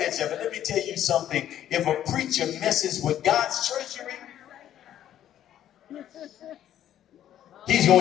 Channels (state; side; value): quieter; right; 11.3 dB